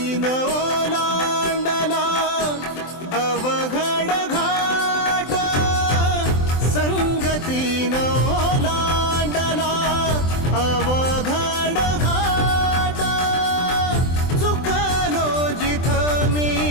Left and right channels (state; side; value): late; right; 23 ms